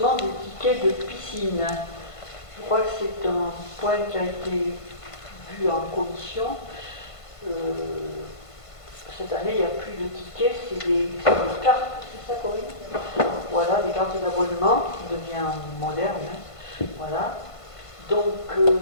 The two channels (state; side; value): late; right; 1.5 ms